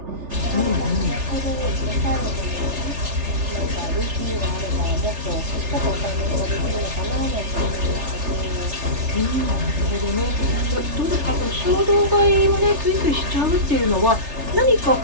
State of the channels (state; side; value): late; left; 3.3 ms